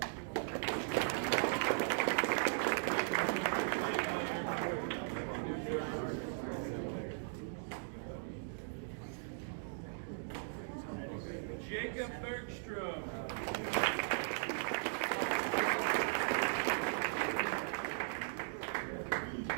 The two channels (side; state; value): left; silent; digital silence